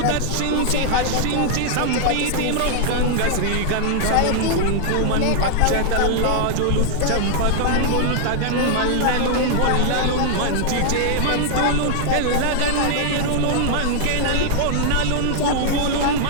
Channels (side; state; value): both; different; correlation 0.00